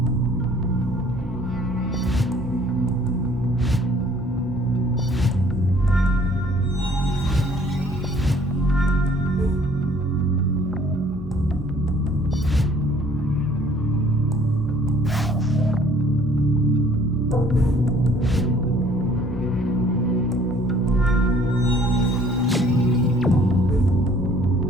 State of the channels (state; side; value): normal; both; correlation 0.57